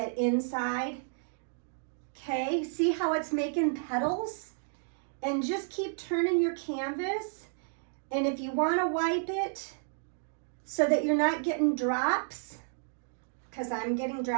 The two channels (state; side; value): silent; left; digital silence